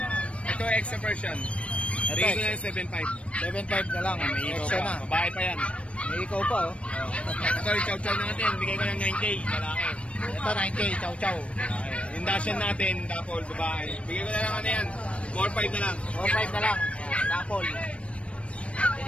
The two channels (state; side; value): late; right; 0.061 ms